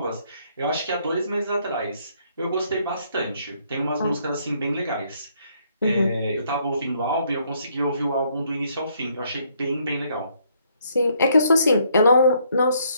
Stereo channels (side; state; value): both; inverted; correlation -0.69